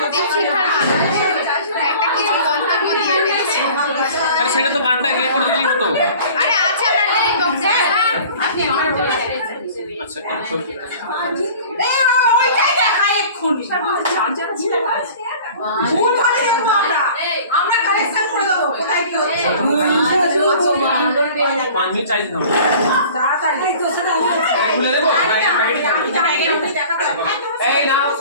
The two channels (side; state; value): both; inverted; correlation -0.45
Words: দীপশিখার একটা কিছু মন্তব্য দিয়ে ফেলেছি। আরে সেটা তো গানটা ইয়ে করে দিলেই হতো। আরে আছে আপনার লিরিক বক্সে। আপনি অন করে আচ্ছা কন্ট্রোল ওইটাই দেখা এক্ষুনি ভুল ধরে দেবো আমরা কালেকশন করে দেবো কোথায় কি হচ্ছে 5 মিনিট চাই দিতাম তাড়াতাড়ি তো সেটা খুলে দেবো এই নাও